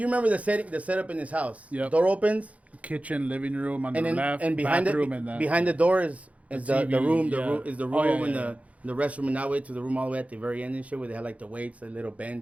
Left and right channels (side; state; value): left; late; 0.067 ms